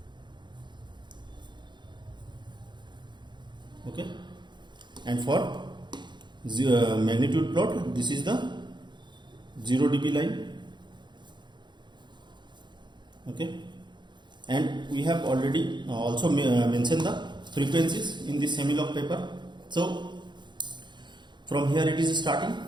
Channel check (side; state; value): left; late; 0.22 ms